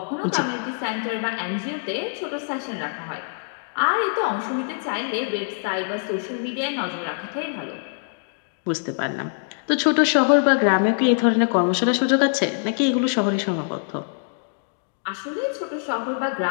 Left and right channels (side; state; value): right; silent; digital silence